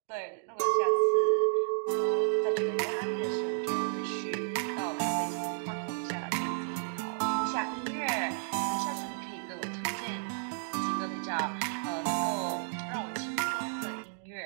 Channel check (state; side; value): silent; left; digital silence